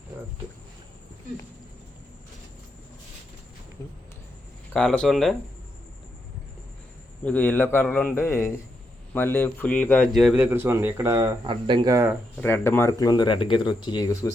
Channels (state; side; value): normal; both; correlation 0.82